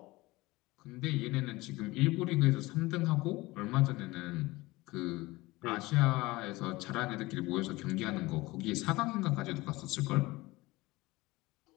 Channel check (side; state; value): right; quieter; 20.7 dB